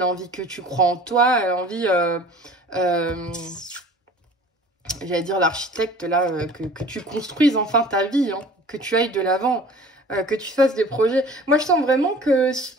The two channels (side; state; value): both; normal; correlation 0.46